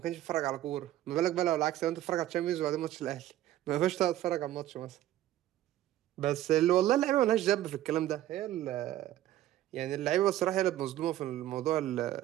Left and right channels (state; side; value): quieter; left; 13.7 dB